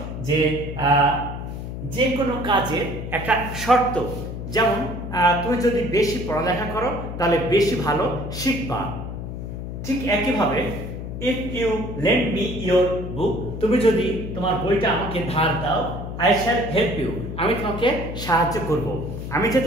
যে কোনো কাজের একটা শর্ত, যেমন তুমি যদি বেশি পড়ালেখা করো তাহলে বেশি ভালো শিখবা। ঠিক একইভাবে if you lend me your book, তুমি যদি তোমার বইটা আমাকে ধার দাও, I shall help you, আমি তোমাকে সাহায্য করব। আমি যে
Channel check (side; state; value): left; noise; hum, 7 dB below the sound